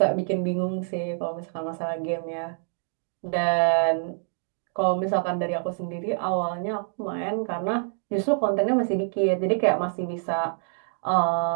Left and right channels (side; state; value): left; silent; digital silence